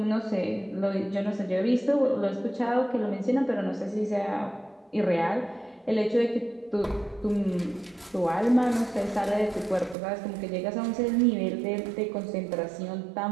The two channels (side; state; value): left; drops out; at 10.0 s